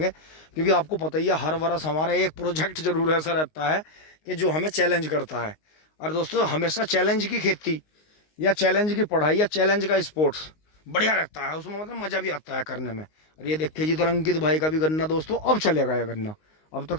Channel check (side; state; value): right; late; 19 ms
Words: क्योंकि आपको पता ही है हर वर्ष हमारा एक प्रोजेक्ट जरूर ऐसा रहता है कि जो हमें चैलेंज करता है। और दोस्तों हमेशा चैलेंज की खेती या चैलेंज की पढ़ाई या चैलेंज का स्पोर्ट्स बढ़िया रहता है, उसमें मतलब मज़ा भी आता है करने में। और ये देखिए जी तो अंकित भाई का भी गन्ना दोस्तों अब चलेगा ये गन्ना। अब